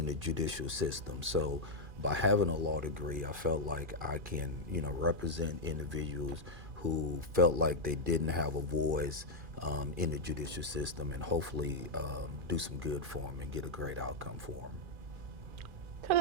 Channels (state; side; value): late; left; 2.4 ms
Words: the judicial system. So by having a law degree, I felt like I can, represent individuals who felt like they didn't have a voice in the judicial system, and hopefully do some good for them and get a great outcome for them.